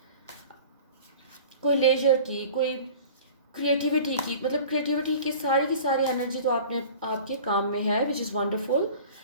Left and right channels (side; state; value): both; inverted; correlation -0.42